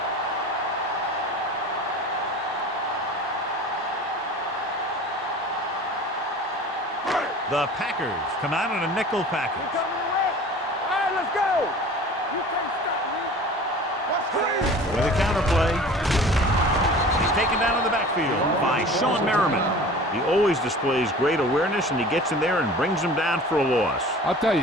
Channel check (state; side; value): normal; both; correlation 0.41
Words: The Packers come out in a nickel package. All right, let's go. You can't stop me. What's crazy? With a counterplay. He's taken down in the backfield by Sean Merriman. He always displays great awareness, and he gets in there and brings him down for a loss. I'll tell you,